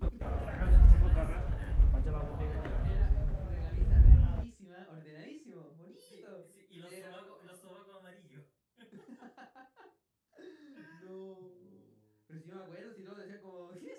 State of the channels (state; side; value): identical; both; correlation 1.00